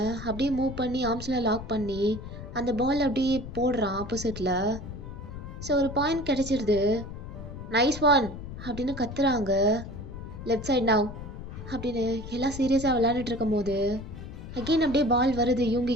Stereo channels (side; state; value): left; noise; rumble, 10 dB below the sound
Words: அப்படியே மூவ் பண்ணி ஆர்ம்ஸில் லாக் பண்ணி அந்த பால் அப்படியே போடுறான் ஆப்போசிட்டில். ஸோ ஒரு பாயிண்ட் கிடைச்சிருது. நைஸ் ஒன் அப்படின்னு கத்துறாங்க. லெஃப்ட் சைட் நவ் அப்படின்னு எல்லாம் சீரியஸாக விளையாண்டுட்டு இருக்கும் போது அகெயின் அப்படியே பால் வருது